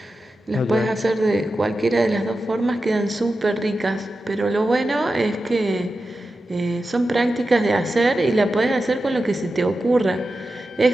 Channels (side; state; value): both; normal; correlation 0.92